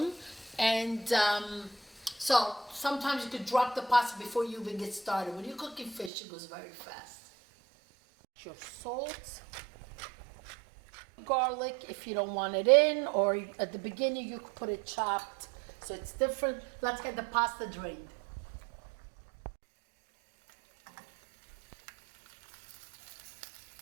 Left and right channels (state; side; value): drops out; left; at 6.1 s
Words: And so sometimes you could drop the pasta before you even get started. When you're cooking fish, it goes very fast. Your salt. Garlic if you don't want it in, or at the beginning you could put it chopped, so it's different. Let's get the pasta drained.